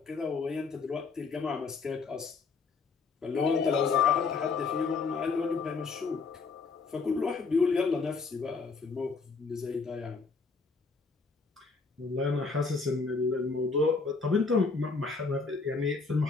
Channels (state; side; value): quieter; right; 4.5 dB